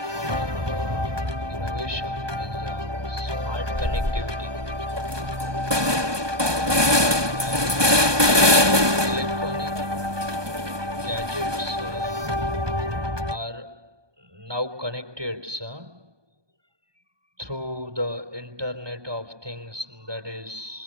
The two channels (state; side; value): late; left; 1.2 ms